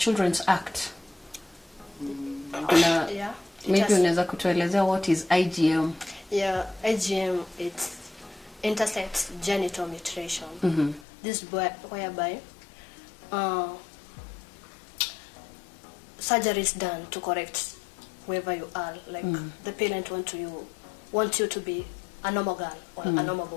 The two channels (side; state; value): right; drops out; at 11.1 s